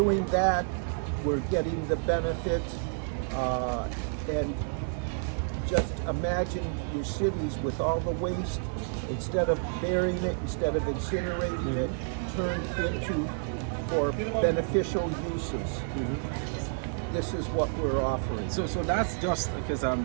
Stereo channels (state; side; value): silent; left; digital silence